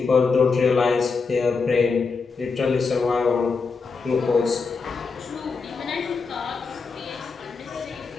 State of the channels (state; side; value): quieter; right; 4.7 dB